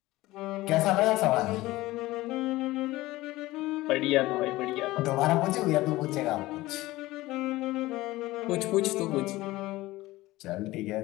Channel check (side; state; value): right; quieter; 18.3 dB